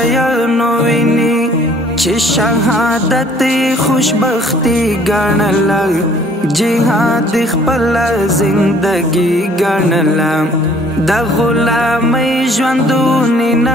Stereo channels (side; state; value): both; normal; correlation 0.57